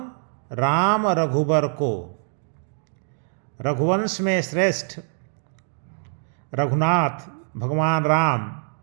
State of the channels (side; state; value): left; silent; 62 dB below the other